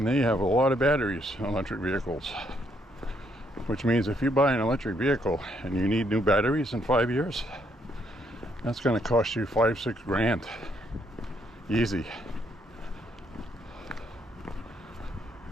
they have a lot of batteries in electric vehicles, which means if you buy an electric vehicle and you need new batteries in 5 years, that's going to cost you $5-6 grand. Easy.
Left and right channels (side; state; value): both; normal; correlation 0.73